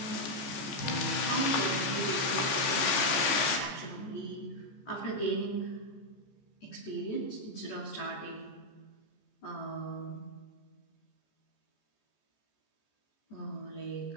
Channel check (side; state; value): right; late; 15 ms